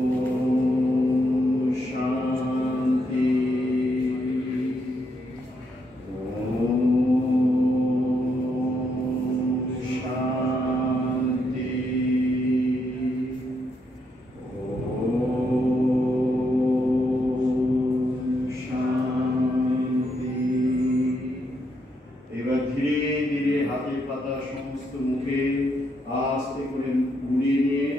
শান্তি। এবার ধীরে ধীরে হাতের পাতা সমস্ত মুখে আস্তে করে গুড়িয়ে নিয়ে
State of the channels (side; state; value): both; normal; correlation 0.78